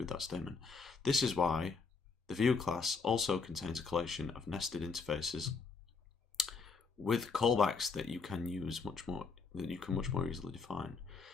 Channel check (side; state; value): right; quieter; 4.8 dB